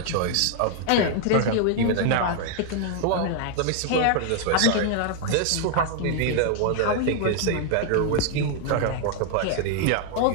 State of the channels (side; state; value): both; different; correlation 0.00